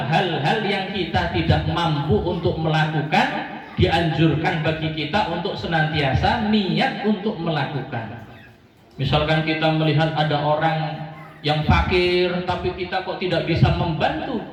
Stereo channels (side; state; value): both; identical; correlation 1.00